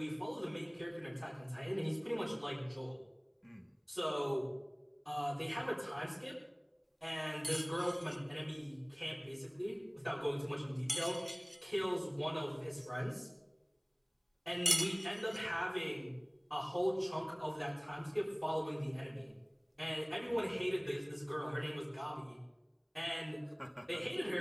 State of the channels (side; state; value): both; identical; correlation 1.00